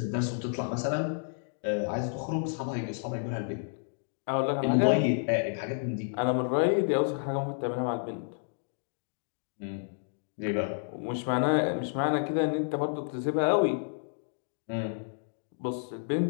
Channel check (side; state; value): right; silent; digital silence